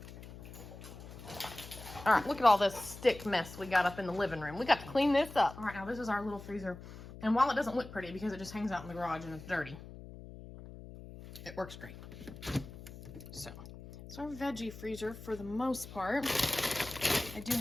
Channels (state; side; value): noise; left; hum, 14 dB below the sound